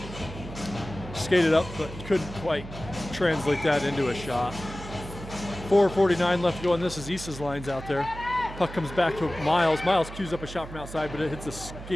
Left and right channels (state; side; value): noise; right; hum, 12 dB below the sound